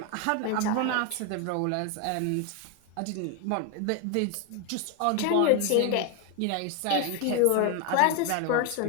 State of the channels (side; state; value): both; different; correlation 0.01